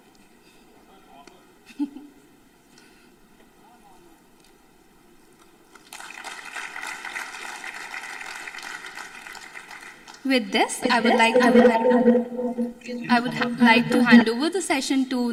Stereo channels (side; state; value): both; identical; correlation 1.00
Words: With this, I would like to hand over the session to